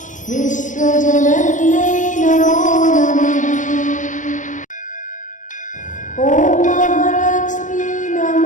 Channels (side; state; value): right; late; 0.37 ms